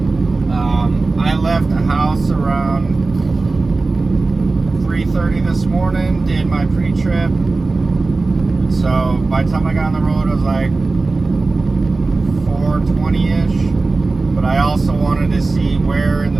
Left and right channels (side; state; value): left; quieter; 3.6 dB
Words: I left the house around 3:30 this morning, did my pre-trip. So by the time I got on the road, it was like 4:20-ish. But I also wanted to see where in